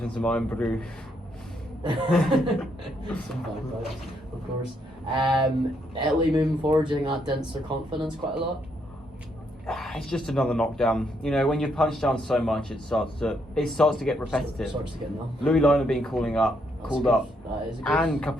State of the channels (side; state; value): both; normal; correlation 0.75